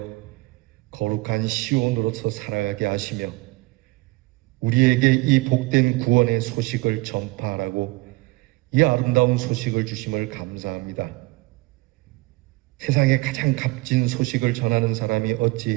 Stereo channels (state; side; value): quieter; left; 22.7 dB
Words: 거룩한 시온으로서 살아가게 하시며 우리에게 이 복된 구원의 소식을 전파하라고 이 아름다운 소식을 주심을 감사합니다. 세상에 가장 값진 소식을 전하는 사람이